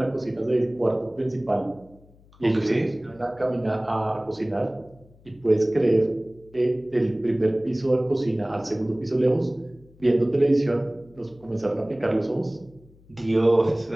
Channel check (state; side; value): noise; left; hum, 27 dB below the sound